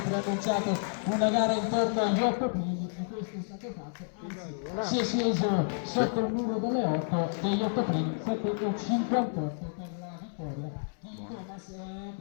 preannunciato una gara intorno agli 8 primi e questo è stato fatto, si è sceso sotto il muro delle 8 degli 8 primi, 7 e 58 per la vittoria di Thomas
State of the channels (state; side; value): silent; right; 57 dB below the other